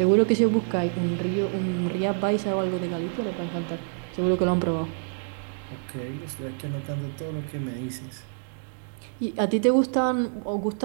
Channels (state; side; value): silent; left; digital silence